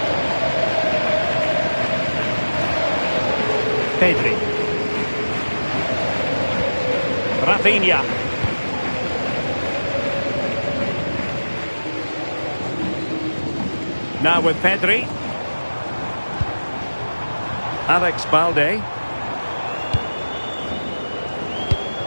Pedri. Rafinha. Now with Pedri. Alex Balde.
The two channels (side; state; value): both; inverted; correlation -1.00